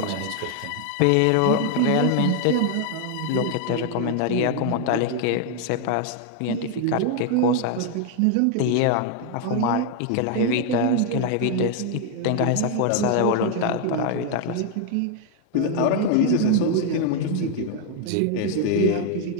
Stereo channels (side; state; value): both; different; correlation 0.01